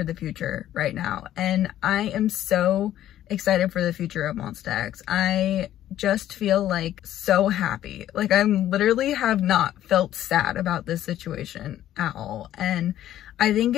the future right now. And I am so excited for the future of Monsta X. I just feel like so happy. Like, I literally have not felt sad about this situation at all. And I think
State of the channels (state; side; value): quieter; right; 12.4 dB